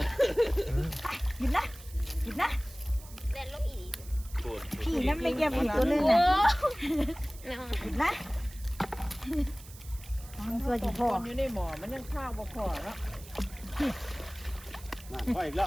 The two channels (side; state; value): right; noise; hiss, 19 dB below the sound